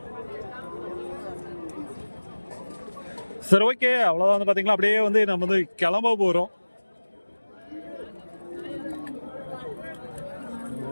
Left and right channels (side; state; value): both; inverted; correlation -1.00